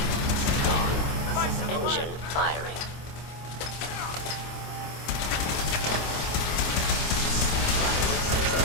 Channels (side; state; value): right; late; 26 ms